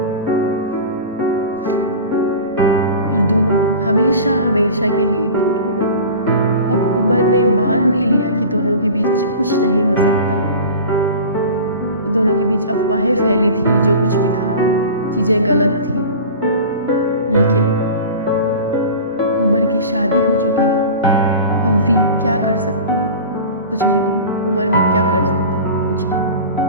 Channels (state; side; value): inverted; both; correlation -0.36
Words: और दोनों हमेशा हमेशा के लिए दूर हो गए। अब उमर ने मान भी लिया कि दोनों के बीच कुछ नहीं हो सकता। दोनों के बीच अफवाहें फैली थी, जो कुछ भी था, चीजें गलत थी। लेकिन उमर की शादी हो चुकी है। अब वी क्या कर सकती है? कुछ भी नहीं। उमर भी क्या कर सकता है? कुछ नहीं।